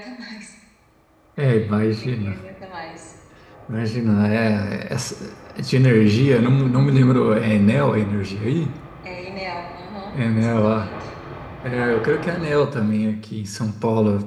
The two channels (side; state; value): both; identical; correlation 1.00